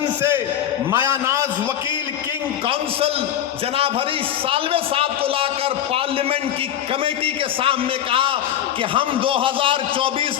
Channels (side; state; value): right; quieter; 10.7 dB